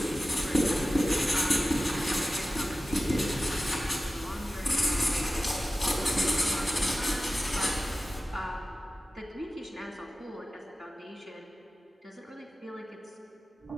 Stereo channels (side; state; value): both; normal; correlation 0.95